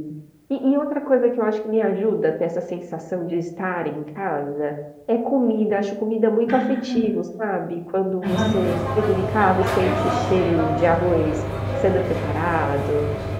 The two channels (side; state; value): both; identical; correlation 1.00